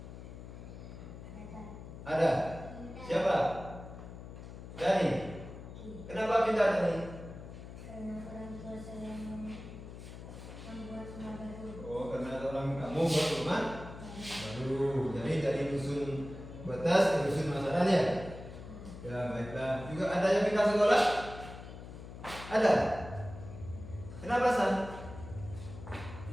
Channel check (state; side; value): noise; left; hum, 12 dB below the sound